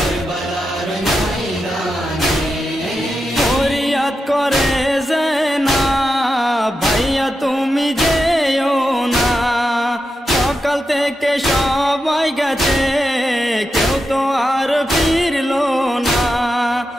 ময়দানে। ফরিয়াদ করে না ভাইয়া তুমি যেও না, সকাল থেকে সবাই গেছে কেউ তো আর ফিরলো না,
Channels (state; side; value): normal; both; correlation 0.88